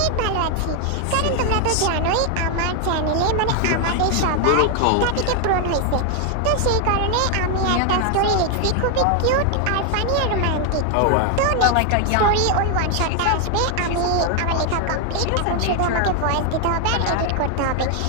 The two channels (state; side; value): different; both; correlation 0.00